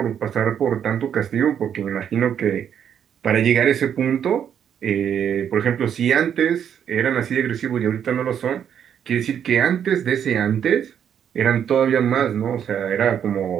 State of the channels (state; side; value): quieter; left; 8.7 dB